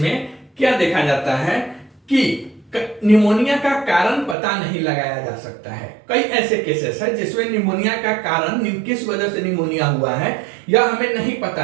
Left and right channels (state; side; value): drops out; left; at 4.4 s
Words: क्या देखा जाता है कि निमोनिया का कारण पता नहीं लगाया जा सकता है। कई ऐसे केसेस है जिसमें निमोनिया का कारण किस वजह से निमोनिया हुआ है यह हमें नहीं